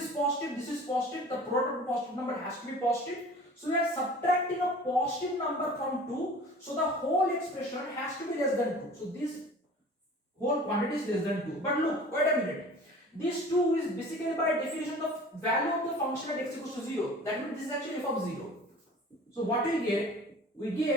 positive, this is positive. The product of positive number has to be positive. So we are subtracting a positive number from 2. So the whole expression has to be less than 2. So this whole quantity is less than 2. But look, wait a minute. This 2 is basically by definition the value of the function at x equals to 0. That means this is actually f of 0. So what we get? We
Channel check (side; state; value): both; normal; correlation 0.44